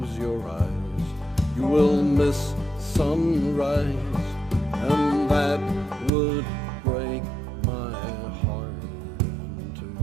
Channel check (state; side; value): drops out; left; at 6.1 s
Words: sunrise, and that would break my heart in